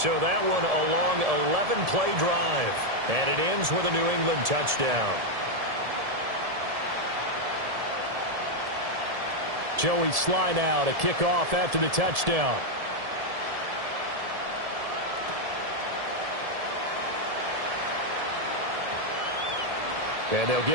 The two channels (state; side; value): late; left; 1.7 ms